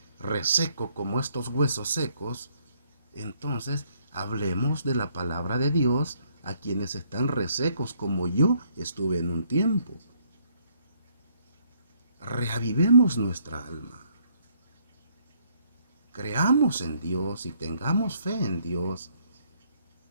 reseco como estos huesos secos, entonces hablemos de la palabra de Dios a quienes están resecos como yo estuve en un tiempo. Reavivemos nuestra alma. Creamos en Dios y tengamos fe en Dios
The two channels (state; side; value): inverted; both; correlation -0.68